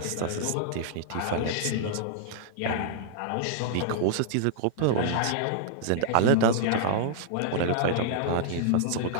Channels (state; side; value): different; both; correlation -0.01